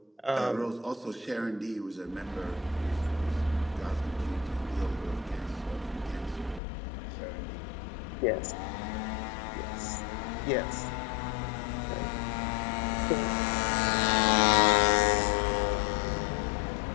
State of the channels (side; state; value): right; drops out; at 6.6 s